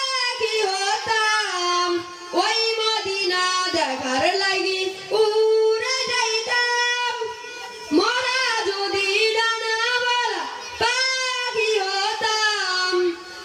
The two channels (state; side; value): identical; both; correlation 1.00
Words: হতাম ওই মদিনা দেখার লাগি উড়ে যাইতাম মোরা যদি ডানাওয়ালা পাখি হতাম